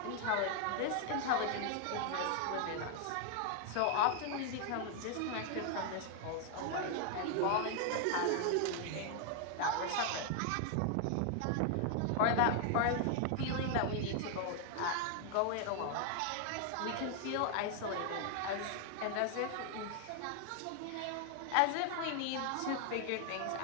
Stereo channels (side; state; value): both; different; correlation 0.00